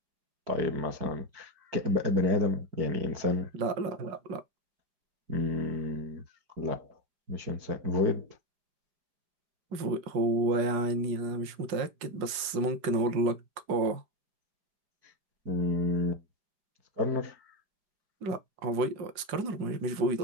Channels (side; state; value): left; late; 4.9 ms